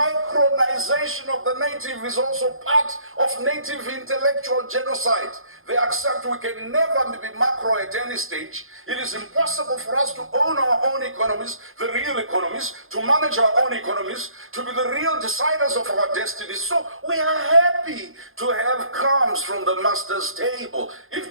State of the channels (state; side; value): late; left; 0.60 ms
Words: of the native is also part of native intellectual genocide. They accept we can never be macro at any stage. It is impossible for us to own our own economies, the real economies, to manage our own economies, to be the real deciders of our destinies. So we are happy happy to have crumbs from the master's table.